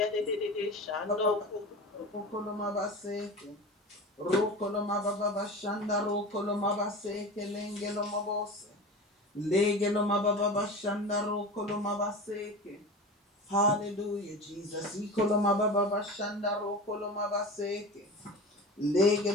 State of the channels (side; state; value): both; normal; correlation 0.31